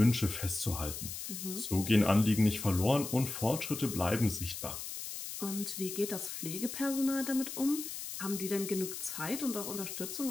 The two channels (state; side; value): noise; left; hiss, 7 dB below the sound